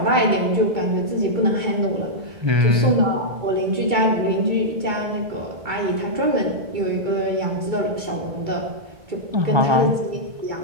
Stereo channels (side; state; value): left; late; 2.3 ms